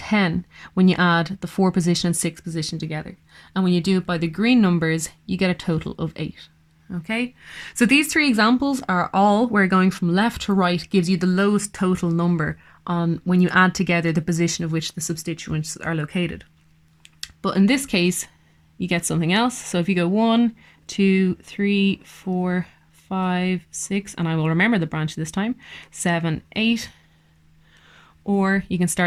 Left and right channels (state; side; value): identical; both; correlation 1.00